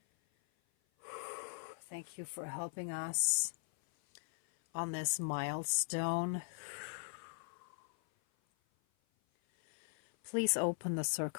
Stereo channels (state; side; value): silent; right; 51 dB below the other